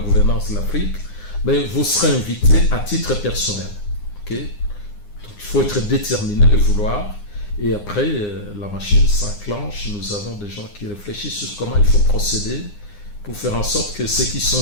de l'Afrique, mais vous serez invité à titre personnel. Okay? Donc il faut être déterminé et vouloir. Et après, la machine s'enclenche. Nous avons des gens qui réfléchissent sur comment il faut procéder pour faire en sorte que ceux qui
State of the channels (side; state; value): right; late; 9.7 ms